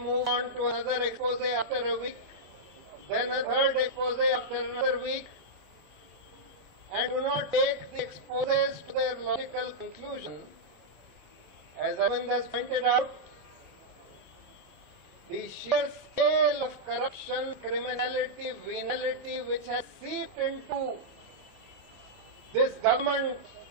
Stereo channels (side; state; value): both; normal; correlation -0.07